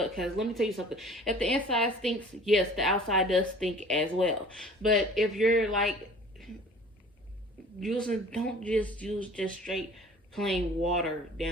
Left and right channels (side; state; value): both; normal; correlation 0.47